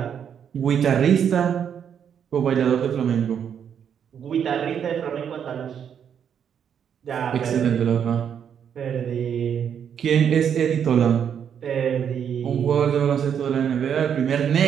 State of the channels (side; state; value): left; quieter; 8.2 dB